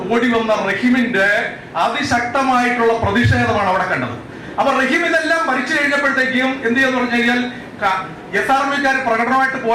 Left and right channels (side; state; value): both; identical; correlation 1.00